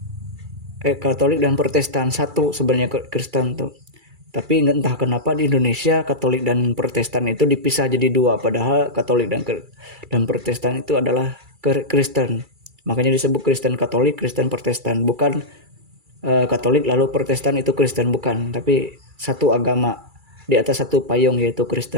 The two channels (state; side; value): late; left; 2.3 ms